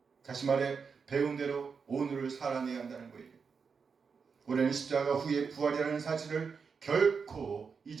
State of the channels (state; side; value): quieter; left; 5.6 dB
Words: 다시 말해 배운 대로 오늘을 살아내야 한다는 거예요. 우리는 십자가 후에 부활이라는 사실을 결코